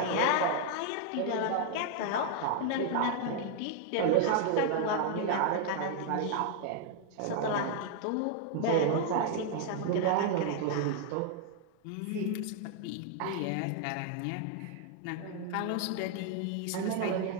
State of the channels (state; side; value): different; both; correlation 0.00